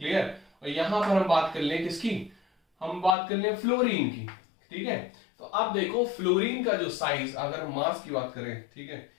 और यहां पर हम बात कर लें किसकी? हम बात कर लें फ्लोरीन की। ठीक है, तो अब देखो फ्लोरीन का जो साइज, अगर हम मास की बात करें, ठीक है,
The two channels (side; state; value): right; drops out; at 3.2 s